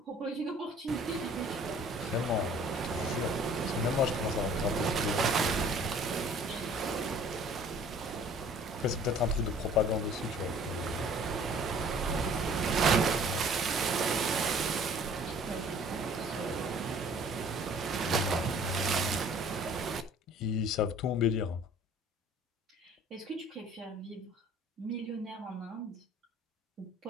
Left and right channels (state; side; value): normal; both; correlation 0.52